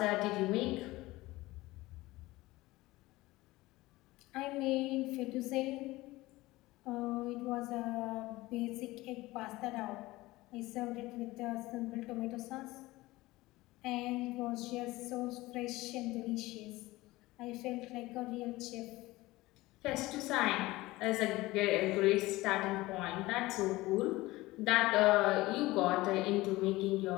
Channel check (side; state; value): right; quieter; 19.3 dB